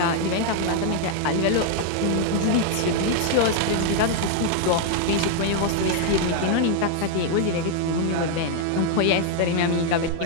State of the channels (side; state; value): both; different; correlation 0.00